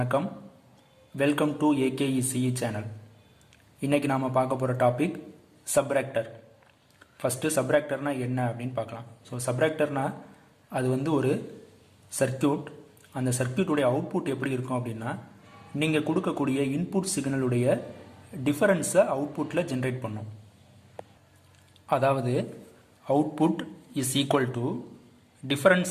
Welcome to AKECE channel. இன்றைக்கி நாம் பார்க்க போகிற டாபிக் சப்ராக்டர். ஃபஸ்ட்டு சப்ராக்டர்னால் என்ன அப்படின்னு பார்க்கலாம். ஸோ சப்ராக்டர்னால் அது ஒரு சர்க்கியூட். அந்த சர்க்கியூட்டுடைய அவுட்புட் எப்படி இருக்கும் அப்படின்னா, நீங்கள் கொடுக்கக்கூடிய இன்புட் சிக்னலுடைய டிஃபரன்ஸை அவுட்புட்டில் ஜென்ரேட் பண்ணும். அதாவது output is equal to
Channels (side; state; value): both; identical; correlation 1.00